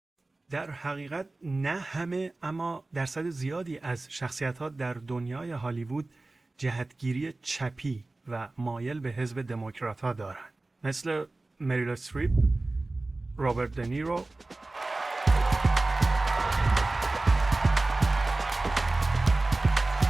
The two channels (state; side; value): quieter; left; 3.1 dB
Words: در حقیقت نه همه اما درصد زیادی از شخصیت‌ها در دنیای هالیوود جهتگیری چپی و مایل به حزب دموکرات‌ها دارند، مثل مریل استریپ، رابرت دنیرو،